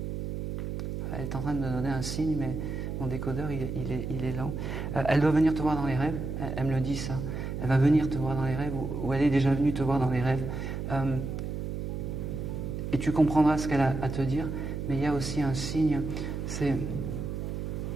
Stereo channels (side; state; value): right; noise; hum, 4 dB below the sound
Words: elle est en train de me donner un signe, mais mon décodeur, il est lent. Elle doit venir te voir dans les rêves. Elle me le dit, ça. Elle va venir te voir dans les rêves, ou elle est déjà venue te voir dans les rêves. Et tu comprendras ce qu'elle a à te dire. Mais il y a aussi un signe, c'est...